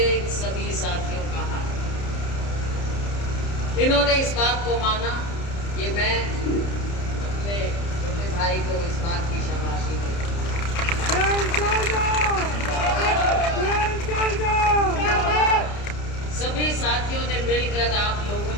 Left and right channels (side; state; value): right; late; 30 ms